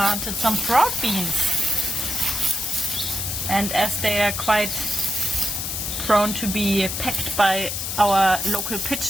some broad beans. And as they are quite prone to be pecked by our local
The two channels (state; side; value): noise; left; hiss, 3 dB below the sound